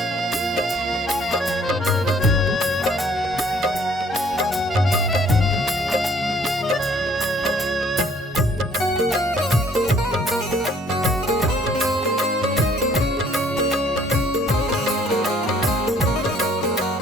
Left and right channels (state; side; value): normal; both; correlation 0.60